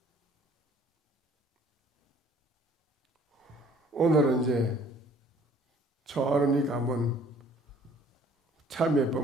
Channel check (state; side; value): normal; both; correlation 0.55